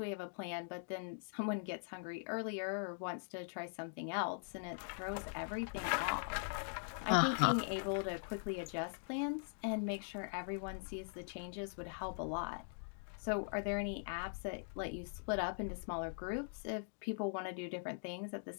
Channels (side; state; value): right; silent; digital silence